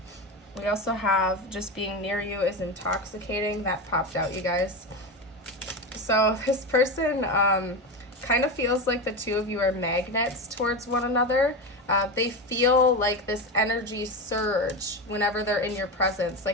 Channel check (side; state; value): both; normal; correlation 0.19